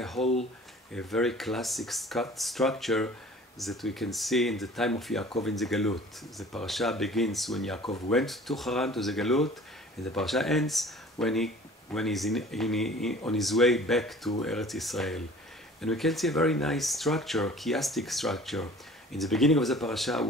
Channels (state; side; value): normal; both; correlation 0.47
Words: very classic structure that we can see in the time of Yaakov in the Galut. The parasha begins when Yaakov went to Haran, to the Galut, and the parasha ends when he's on his way back to Eretz Israel. And we can see a very nice structure, chiastic structure. In the beginning of the parasha,